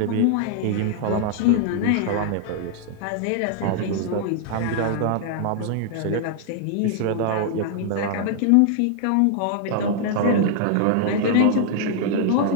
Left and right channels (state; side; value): different; both; correlation 0.00